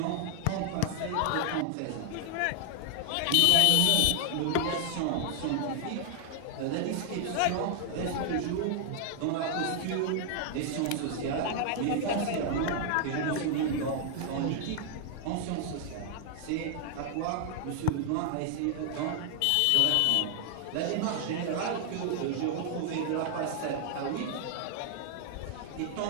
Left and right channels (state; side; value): different; both; correlation 0.00